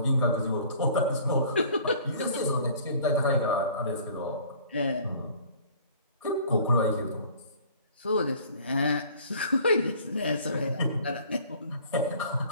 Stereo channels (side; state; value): both; inverted; correlation -0.51